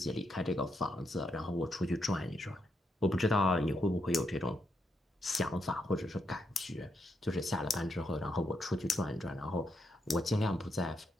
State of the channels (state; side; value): normal; both; correlation 0.80